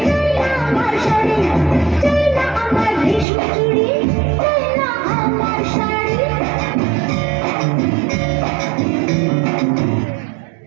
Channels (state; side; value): drops out; left; at 3.2 s